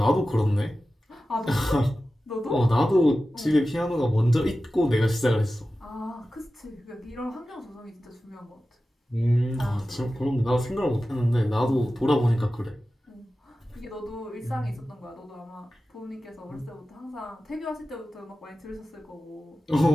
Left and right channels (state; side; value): normal; both; correlation 0.94